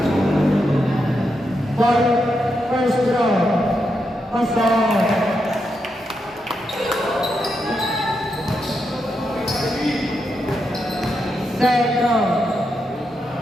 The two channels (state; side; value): normal; both; correlation 0.84